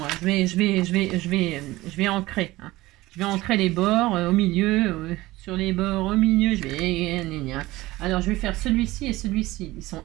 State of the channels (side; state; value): left; quieter; 18.6 dB